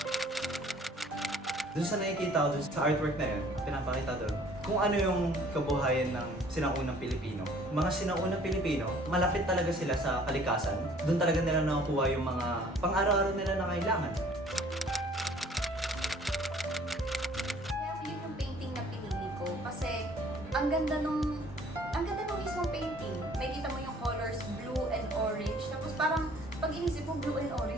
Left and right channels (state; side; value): normal; both; correlation 0.55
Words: Doon sa nakikita ko, doon sa artwork na yun, pinapakita doon, kung ano yung kabuhayan ng sinaunang Pilipino. Mga sinaunang Pilipino, malapit talaga sila sa kalikasan. Doon talaga nila nakukuha yung mga pang-araw-araw nila na kailangan. Kaya yun yung painting na pinili ko kasi ang ganda nung mismong painting. May kita mo yung colors blue and orange. Tapos parang pag inisip mo blue and